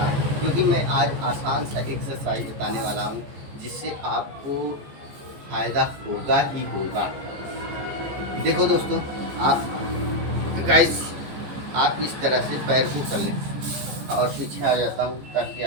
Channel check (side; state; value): left; late; 14 ms